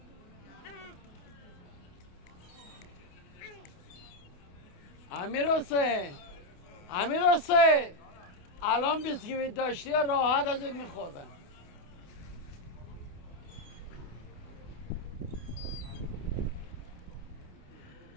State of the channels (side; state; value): right; late; 28 ms